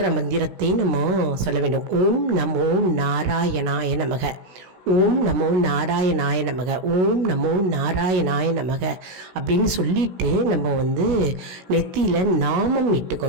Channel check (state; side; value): late; left; 16 ms